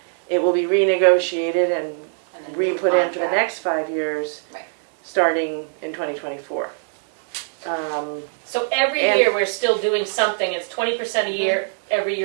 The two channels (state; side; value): silent; left; digital silence